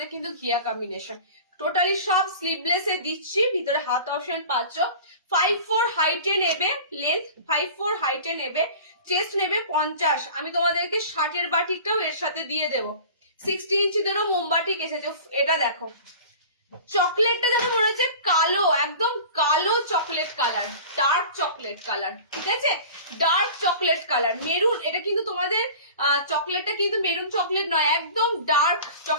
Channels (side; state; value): both; inverted; correlation -0.40